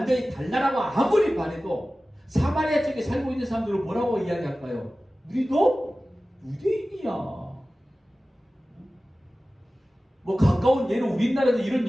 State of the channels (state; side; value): normal; both; correlation 0.96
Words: 달라라고 아무리 말해도 사마리아 쪽에 살고 있는 사람들은 뭐라고 이야기할까요? 우리도 유대인이야. 뭐 가까운 예로 우리나라에도 이런